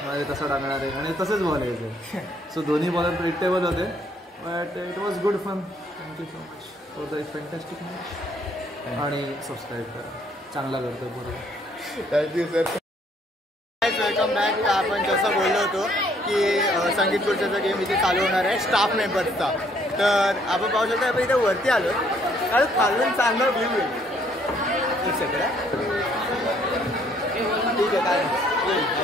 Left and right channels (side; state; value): both; normal; correlation 0.65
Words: आहे, तसं टाकणार आहे, आणि तसंच बॉल यायचं. सो दोन्ही बॉलर प्रिडिक्टेबल होते. But it was good fun. Thank you so much for the fantastic match. आणि सबस्क्राईब करा, चांगला करतो बरोबर. Thank you sir. Welcome back. आपण जसं बोललो होतो की संगीत खुर्च्याचा गेम इथे चालू होणार आहे स्टाफ मेंबर्सचा. तर आपण पाहू शकतो, आपण इथे वरती आलो कारण खालून चांगला व्ह्यू आहे. ठीक आहे, काय